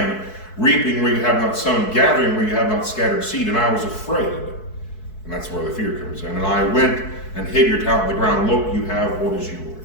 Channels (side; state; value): right; late; 4.6 ms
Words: reaping where you have not sown, gathering where you have not scattered seed, and I was afraid. And that's where the fear comes in. And I went and hid your talent in the ground. Look, you have what is